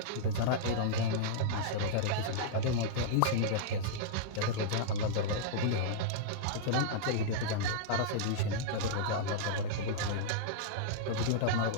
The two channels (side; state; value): both; different; correlation -0.02